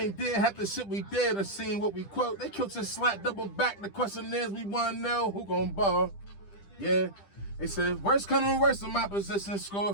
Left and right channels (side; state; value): right; late; 10 ms